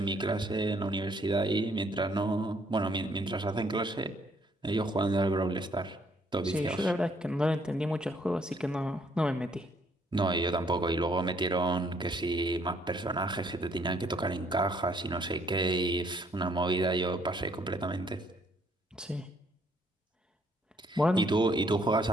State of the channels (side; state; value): both; normal; correlation 0.67